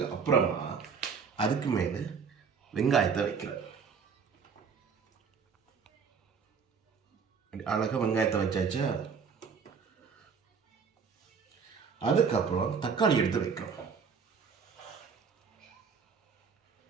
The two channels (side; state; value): left; quieter; 5.9 dB